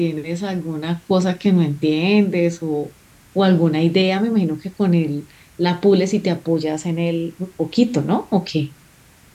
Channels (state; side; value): identical; both; correlation 1.00